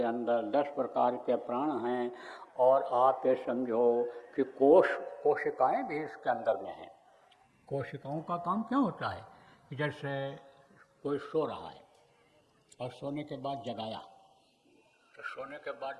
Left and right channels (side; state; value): both; identical; correlation 1.00